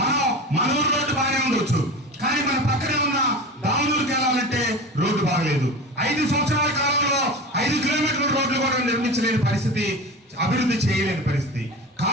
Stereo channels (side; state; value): both; normal; correlation 0.31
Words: ఊరు రోడ్డు బాగానే ఉండొచ్చు, కానీ మన పక్కనే ఉన్న దాములూరుకి వెళ్ళాలంటే రోడ్డు బాగలేదు. 5 సంవత్సరాల కాలంలో 5 కిలోమీటర్ల రోడ్లు కూడా నిర్మించలేని పరిస్థితి, అభివృద్ధి చేయలేని పరిస్థితి.